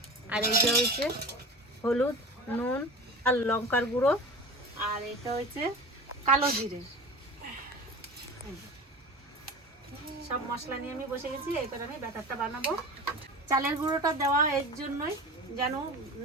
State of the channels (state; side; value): normal; both; correlation 0.33